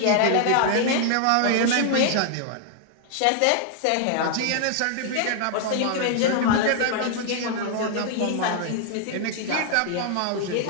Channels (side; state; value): both; different; correlation 0.00